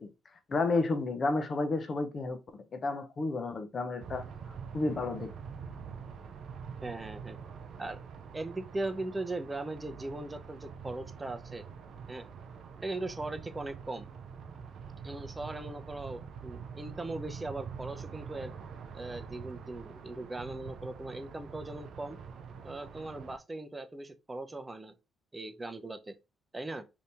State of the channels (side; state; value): both; normal; correlation 0.83